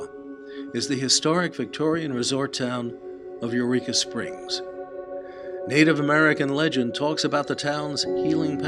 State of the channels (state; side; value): identical; both; correlation 1.00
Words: is the historic Victorian resort town of Eureka Springs. Native American legend talks about the town's healing